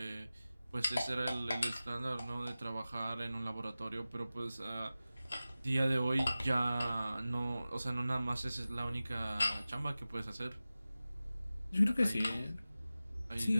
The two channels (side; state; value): both; inverted; correlation -0.96